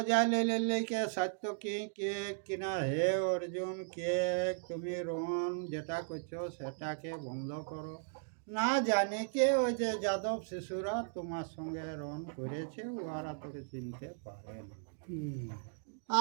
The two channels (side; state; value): left; silent; digital silence